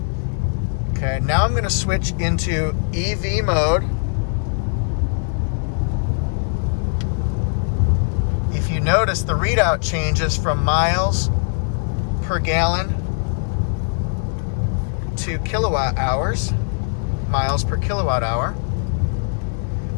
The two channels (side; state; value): right; silent; 61 dB below the other